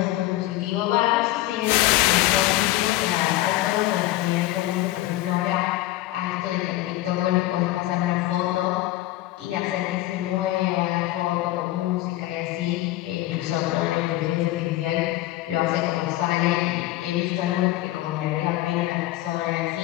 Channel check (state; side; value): quieter; right; 16.4 dB